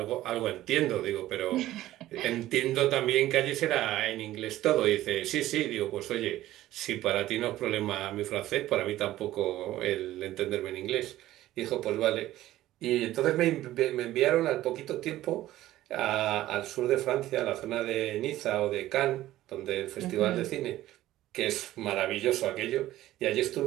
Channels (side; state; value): left; quieter; 14.8 dB